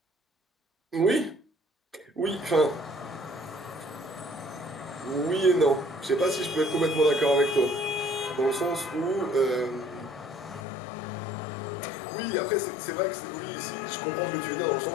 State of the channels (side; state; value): right; drops out; at 10.7 s